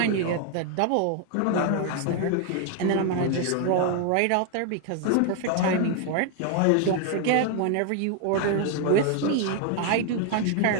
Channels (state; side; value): different; both; correlation 0.01